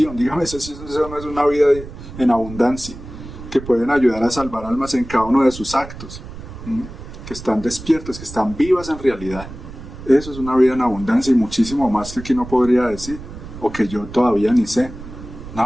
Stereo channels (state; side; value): noise; right; rumble, 13 dB below the sound